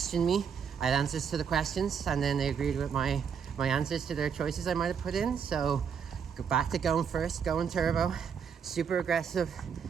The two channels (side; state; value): left; quieter; 7.0 dB